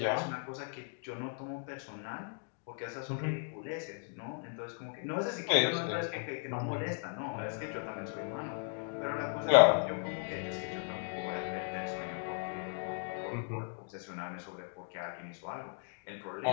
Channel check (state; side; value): silent; right; 53 dB below the other